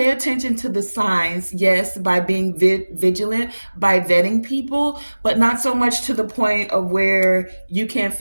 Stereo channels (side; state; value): both; inverted; correlation -1.00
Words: attention to the signs, yes, by being vigilant, by vetting people, but not so much to the point of where you can't